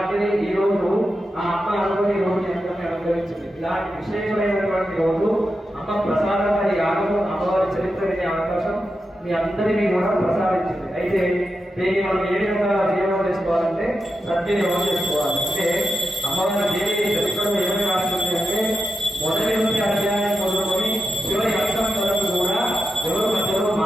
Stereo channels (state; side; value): normal; both; correlation 0.89